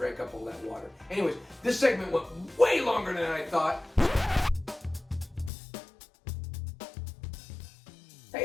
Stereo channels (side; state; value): right; drops out; at 5.5 s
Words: up all that water. Anyways, this segment went way longer than I thought.